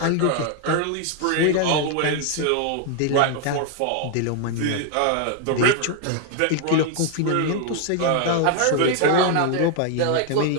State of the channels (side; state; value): both; different; correlation 0.00